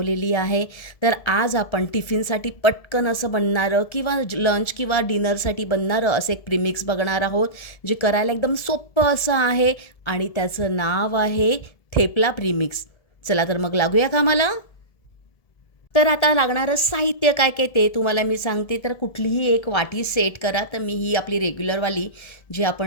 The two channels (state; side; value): late; right; 1.7 ms